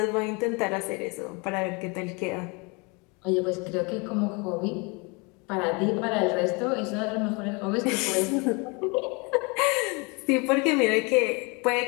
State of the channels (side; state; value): right; quieter; 29.8 dB